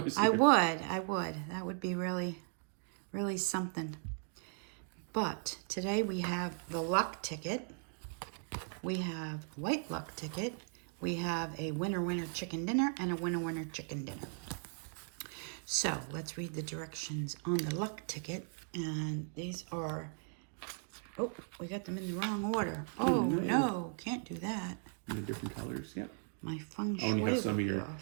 I would. That would be really, really something. But today we have the luck ticket. We have white luck ticket. We have a winner chicken dinner and a winner chicken dinner. So let's read the directions on the luck ticket. And these are, oh, we got them in the wrong order. Oh, no, can't do that. They're different colors, yep. My feng shui. Oh, and you have some of your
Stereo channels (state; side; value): silent; left; 53 dB below the other